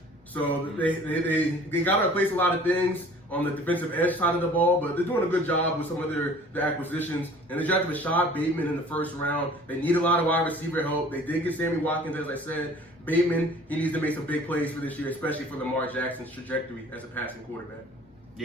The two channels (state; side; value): normal; both; correlation 0.49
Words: So they got to replace a lot of things on the defensive edge side of the ball, but they're doing a good job with some of their acquisitions. And they drafted Rashad Bateman in the first round. They need a lot of wide receiver help. They did get Sammy Watkins, as I said. Bateman, he needs to make some big plays for this year, especially for Lamar Jackson's trajectory as a passing quarterback.